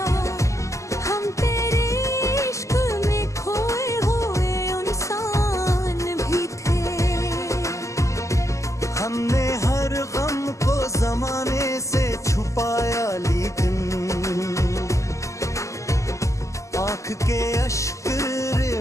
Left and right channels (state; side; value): late; right; 0.15 ms